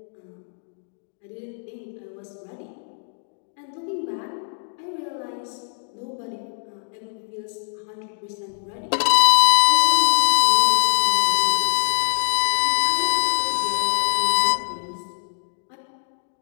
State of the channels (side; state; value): right; silent; digital silence